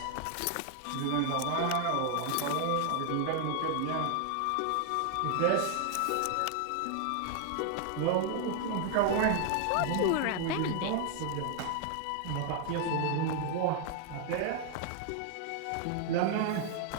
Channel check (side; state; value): both; different; correlation 0.00